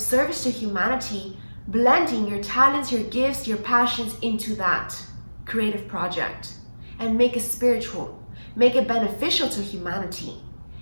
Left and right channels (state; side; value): inverted; both; correlation -1.00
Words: to humanity blending your talents, your gifts, your passions into that creative project and make it spiritual, make it beneficial to humanity.